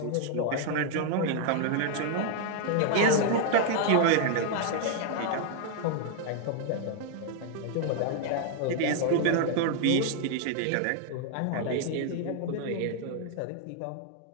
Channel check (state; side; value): different; both; correlation 0.00